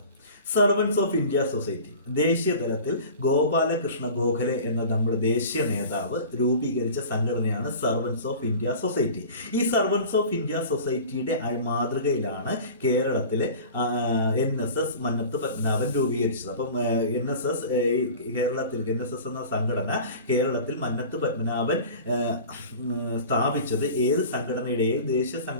സർവൻസ് ഓഫ് ഇന്ത്യ സൊസൈറ്റി ദേശീയ തലത്തിൽ ഗോപാലകൃഷ്ണ ഗോഖലെ എന്ന നമ്മുടെ ദേശീയ നേതാവ് രൂപീകരിച്ച സംഘടനയാണ് സർവൻസ് ഓഫ് ഇന്ത്യ സൊസൈറ്റി. ഈ സർവൻസ് ഓഫ് ഇന്ത്യ സൊസൈറ്റിയുടെ മാതൃകയിലാണ് കേരളത്തിലെ NSS മന്നത്ത് പത്മനാഭൻ രൂപീകരിച്ചത്. അപ്പം NSS എന്ന സംഘടന കേരളത്തിൽ മന്നത്ത് പത്മനാഭൻ സ്ഥാപിച്ചത് ഏത് ദേശീയ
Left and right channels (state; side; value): inverted; both; correlation -0.39